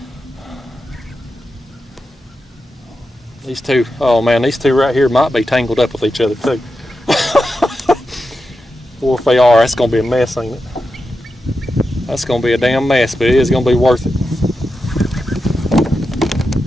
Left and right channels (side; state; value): both; normal; correlation 0.89